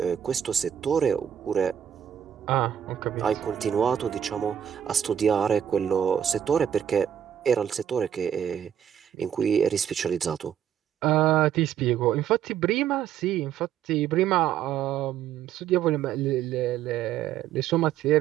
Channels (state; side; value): quieter; left; 9.4 dB